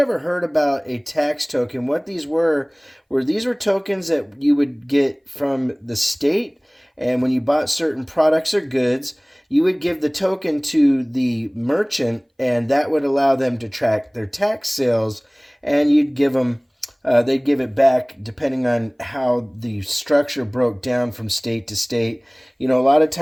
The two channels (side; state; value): both; identical; correlation 1.00